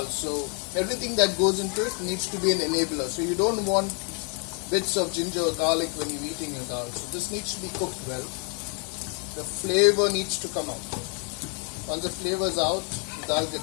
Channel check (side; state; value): right; quieter; 38.6 dB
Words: so everything that goes into it needs to be an enabler. So you don't want bits of ginger or garlic when you're eating your dal. So this needs to be cooked well. The flavor needs to come out. Once the flavor is out, the dal